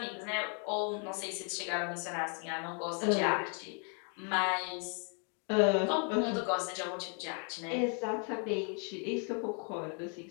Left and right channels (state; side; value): quieter; right; 39.8 dB